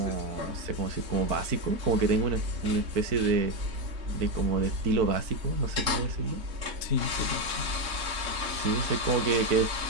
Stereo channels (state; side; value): late; left; 3.6 ms